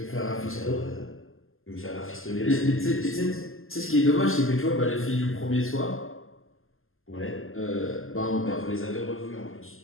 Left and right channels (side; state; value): right; late; 0.60 ms